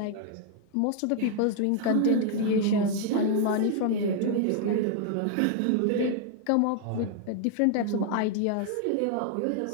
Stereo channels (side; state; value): both; different; correlation -0.01